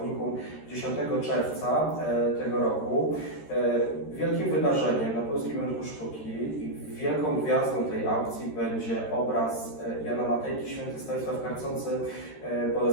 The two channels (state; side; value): late; right; 13 ms